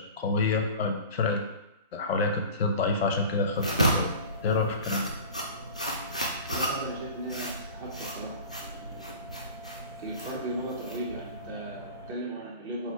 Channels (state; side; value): inverted; both; correlation -0.38